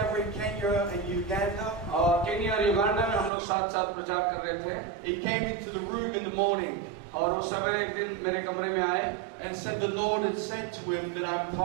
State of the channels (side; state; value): left; drops out; at 3.3 s